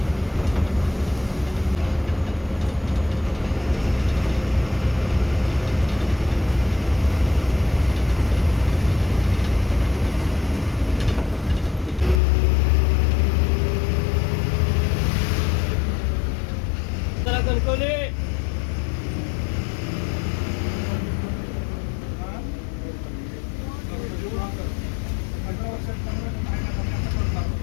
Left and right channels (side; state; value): right; drops out; at 12.2 s